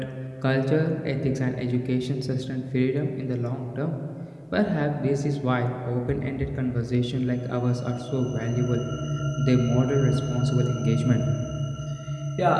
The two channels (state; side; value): identical; both; correlation 1.00